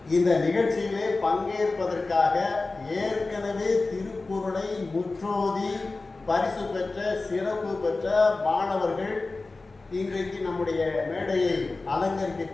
இந்த நிகழ்ச்சியிலே பங்கேற்பதற்காக ஏற்கனவே திருக்குறளை முற்றோதி பரிசு பெற்ற சிறப்பு பெற்ற மாணவர்கள் இன்றைக்கு நம்முடைய மேடையை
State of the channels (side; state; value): right; quieter; 3.5 dB